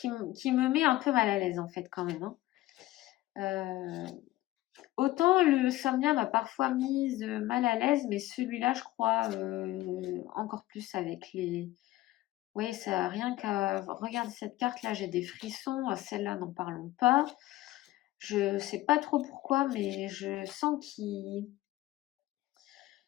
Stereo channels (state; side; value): quieter; right; 16.6 dB